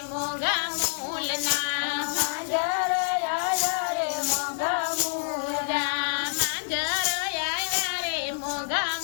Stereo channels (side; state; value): right; silent; 60 dB below the other